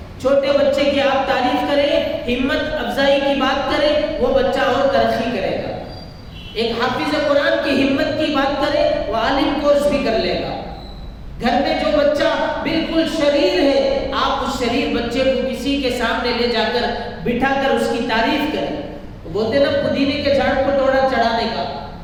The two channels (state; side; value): identical; both; correlation 1.00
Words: چھوٹے بچے کی آپ تعریف کریں, ہمت افزائی کی بات کریں, وہ بچہ اور ترقی کرے گا. ایک حافظ قرآن کی ہمت کی بات کریں, وہ عالم کورس بھی کر لے گا. گھر میں جو بچہ بالکل شریر ہے, آپ اس شریر بچے کو کسی کے سامنے لے جا کر بٹھا کر اس کی تعریف کریں. بولتے نا پودینے کے جھاڑ کو ڈوڑا چڑھانے کا.